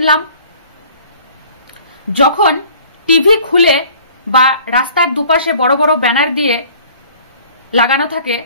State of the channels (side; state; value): both; inverted; correlation -0.51